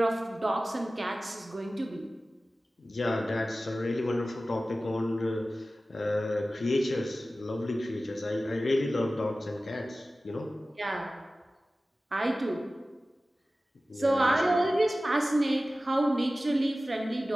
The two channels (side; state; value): both; normal; correlation 0.96